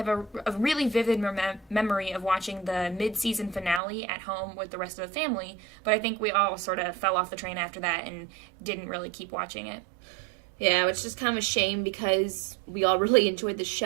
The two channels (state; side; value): drops out; left; at 3.8 s